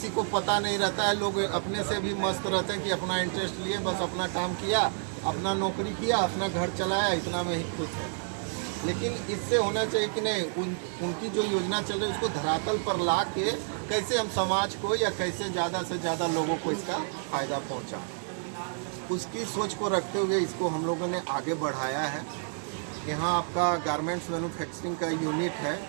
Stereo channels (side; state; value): left; silent; digital silence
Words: को पता नहीं रहता है, लोग अपने से भी मस्त रहते हैं कि अपना इंटरेस्ट लिए, बस अपना काम किया, अपना नौकरी किया, अपना घर चलाया, इतना में ही खुश है। लेकिन इससे होना चाहिए कि नहीं, उनकी जो योजना चल रही है उसको धरातल पर ला के कैसे हम समाज को या कैसे ज़्यादा से ज़्यादा लोगों को इसका फ़ायदा पहुँचा, उसकी सोच को रखते हुए इसको हम लोगों ने आगे बढ़ाया है। यहाँ आपका गारमेंट्स मैन्युफैक्चरिंग का यूनिट है